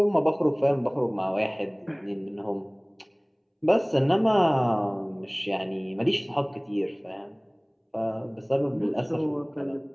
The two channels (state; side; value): identical; both; correlation 1.00